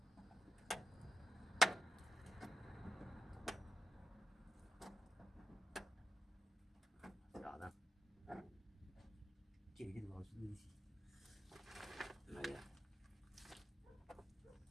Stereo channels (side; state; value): both; normal; correlation 0.88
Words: Jardin. Quelle idée de voir le sous ici. Voilà.